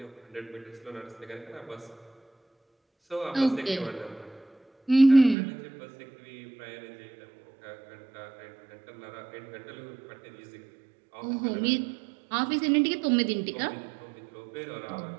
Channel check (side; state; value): left; drops out; at 5.4 s